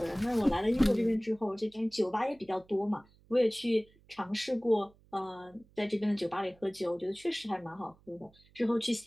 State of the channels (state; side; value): noise; right; hum, 29 dB below the sound